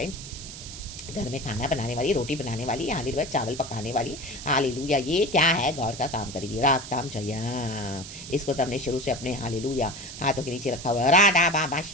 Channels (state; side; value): noise; right; hiss, 12 dB below the sound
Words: घर में खाना बनाने वाली, रोटी बनाने वाली, हालेलुया चावल पकाने वाली, हालेलुया ये क्या है, गॉड का काम करेगी। रागताम जया। इसको तो हमने शुरू से अपने हालेलुया हाथों के नीचे रखा हुआ है। राडा बाबा